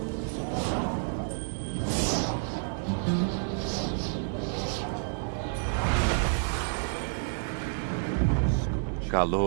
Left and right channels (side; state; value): left; silent; digital silence